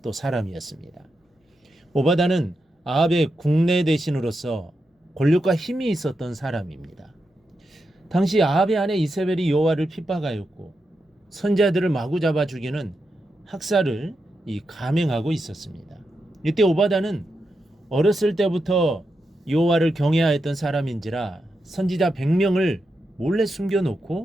또 사람이었습니다. 오바댜는 아합의 국내 대신으로서 권력과 힘이 있었던 사람입니다. 당시 아합의 아내 이세벨이 여호와를 핍박하였고 선지자들을 마구 잡아 죽이는 학살을 감행하고 있었습니다. 이때 오바댜는 어렸을 때부터 여호와를 경외하였던 사람인지라 선지자 100명을 몰래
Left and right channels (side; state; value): both; normal; correlation 0.87